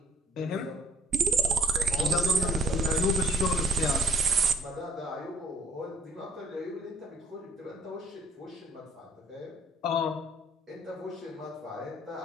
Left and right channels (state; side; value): normal; both; correlation 0.66